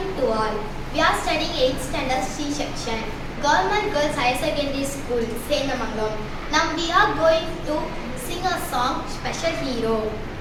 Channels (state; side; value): identical; both; correlation 1.00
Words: to all. We are studying 8th standard C section, Government Girls Higher Secondary School, Senamangalam. Now we are going to sing a song, Special Hero.